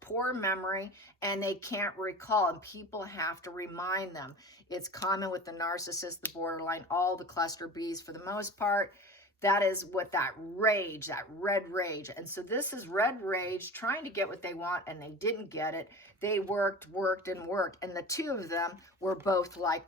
poor memory, and they can't recall. And people have to remind them. It's common with the narcissist, the borderline, all the cluster Bs for the most part. That is what that rage, that red rage. And so this is red rage trying to get what they want, and they didn't get it. They worked. And the two of them were both like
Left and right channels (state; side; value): normal; both; correlation 0.35